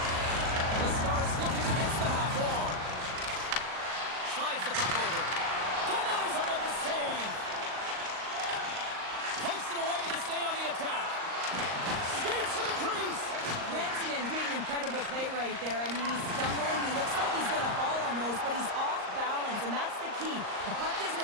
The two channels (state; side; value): late; left; 38 ms